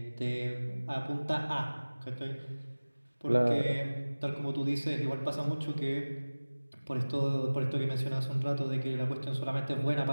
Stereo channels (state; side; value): inverted; both; correlation -1.00